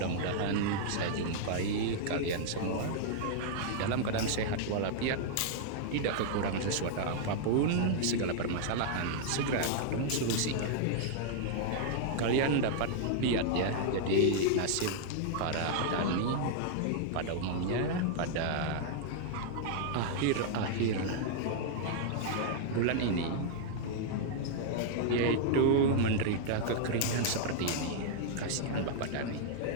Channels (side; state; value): both; different; correlation -0.01